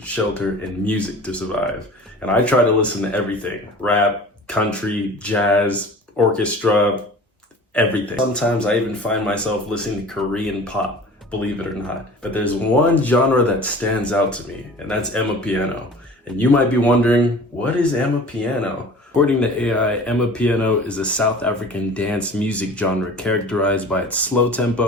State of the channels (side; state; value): both; normal; correlation 0.42